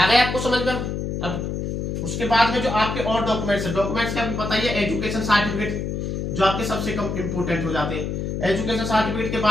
गए आपको समझ में? अब उसके बाद में जो आपके और डॉक्यूमेंट्स है, डॉक्यूमेंट्स के आपको पता ही है, एजुकेशन सर्टिफिकेट जो आपके सबसे कम इंपोर्टेंट हो जाते हैं। एजुकेशन सर्टिफिकेट के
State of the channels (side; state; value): left; noise; hum, 3 dB below the sound